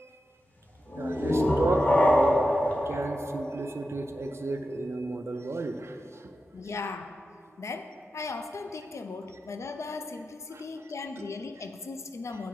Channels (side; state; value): both; normal; correlation 0.90